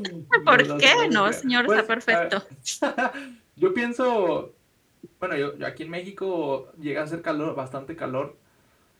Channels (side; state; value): both; identical; correlation 1.00